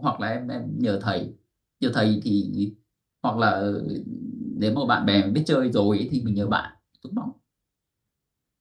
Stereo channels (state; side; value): identical; both; correlation 1.00